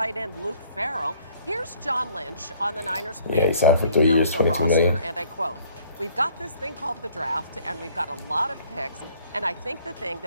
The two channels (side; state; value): both; inverted; correlation -0.58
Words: end Luke Farrell. Here's John Lynch on the Niners' Yeah, he plans to signed for 3 years, rebuild the 22 million. roster, and I quote, "We've got this thing called the draft, and we've got a lot of picks, and I think the thing